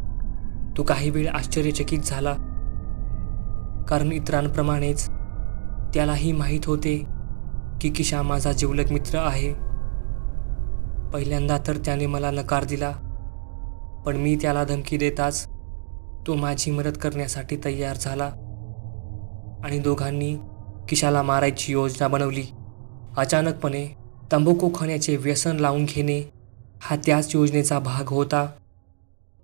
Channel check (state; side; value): silent; left; digital silence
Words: तो काही वेळ आश्चर्यचकित झाला, कारण इतरांप्रमाणेच त्यालाही माहीत होते की किशा माझा जिवलग मित्र आहे. पहिल्यांदा तर त्याने मला नकार दिला, पण मी त्याला धमकी देताच तो माझी मदत करण्यासाठी तयार झाला आणि दोघांनी किशाला मारायची योजना बनवली. अचानकपणे तंबाखू खाण्याचे व्यसन लावून घेणे हा त्याच योजनेचा भाग होता.